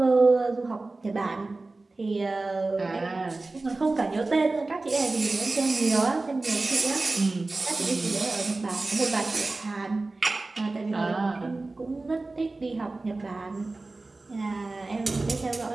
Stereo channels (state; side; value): quieter; left; 3.3 dB